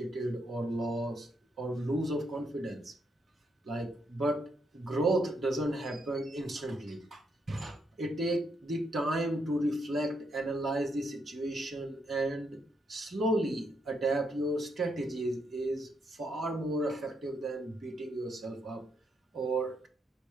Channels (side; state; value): both; normal; correlation 0.77